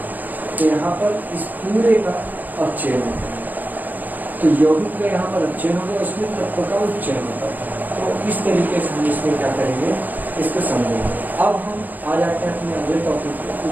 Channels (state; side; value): late; left; 0.084 ms